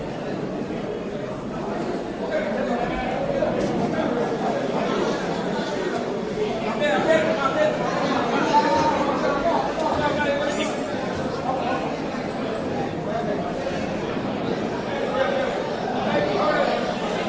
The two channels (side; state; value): both; identical; correlation 1.00